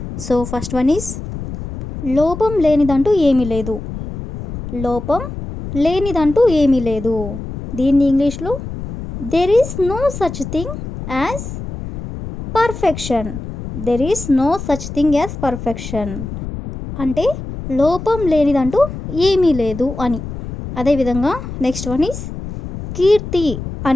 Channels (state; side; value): noise; left; rumble, 9 dB below the sound